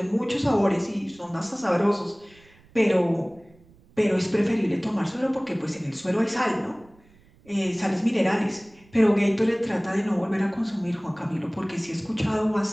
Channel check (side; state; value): right; noise; rumble, 28 dB below the sound